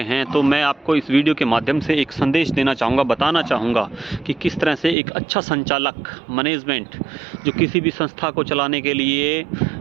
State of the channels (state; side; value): drops out; left; at 5.0 s